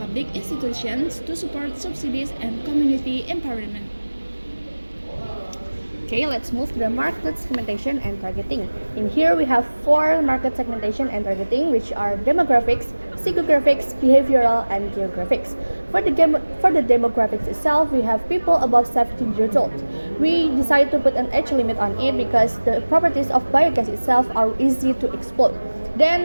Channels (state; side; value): inverted; both; correlation -1.00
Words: institutions to support subsidies and community empowerment. Okay, let's move to the market segmentation and targeting. In here, we have 4 market segmentation and targeting, which are demographics, psychographics, behavioral, and geographics. For the demographics itself, we have people above 17 years old. We decided to put an age limit on it because the properties of biogas itself are easy to exploit.